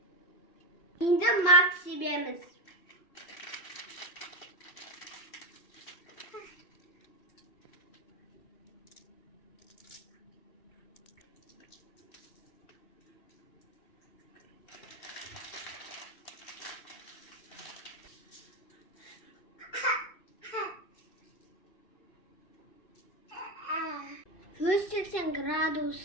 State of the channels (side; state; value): right; late; 2.7 ms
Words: Енді мак себеміз. Жүз 180